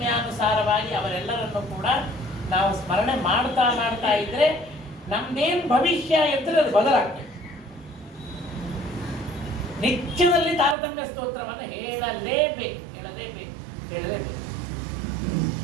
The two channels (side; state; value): left; drops out; at 10.8 s